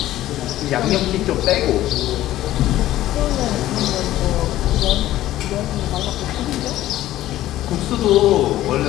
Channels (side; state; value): right; quieter; 14.4 dB